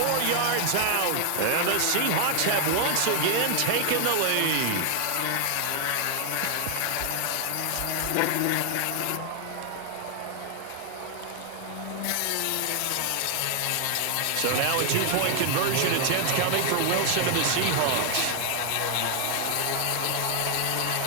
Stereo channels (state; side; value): different; both; correlation 0.00